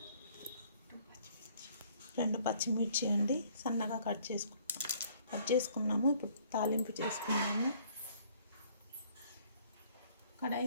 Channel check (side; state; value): both; inverted; correlation -0.60